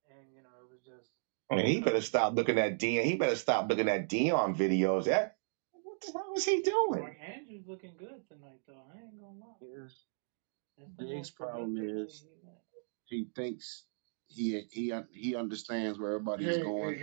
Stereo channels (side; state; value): left; silent; digital silence